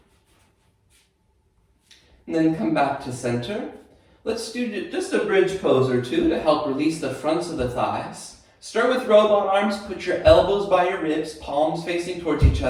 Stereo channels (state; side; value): identical; both; correlation 1.00